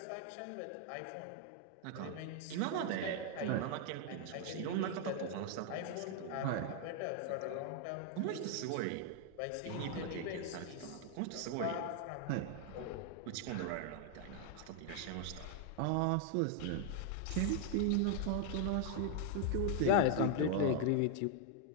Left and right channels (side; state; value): both; different; correlation 0.00